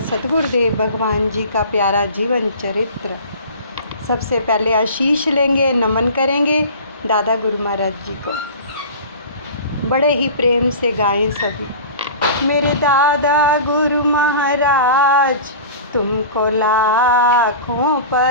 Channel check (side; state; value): both; inverted; correlation -0.37